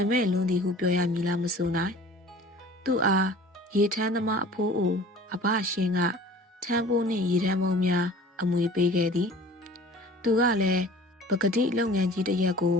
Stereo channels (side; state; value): both; normal; correlation 0.46